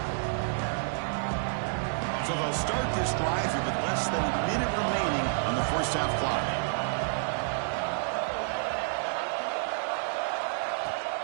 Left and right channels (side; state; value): left; silent; digital silence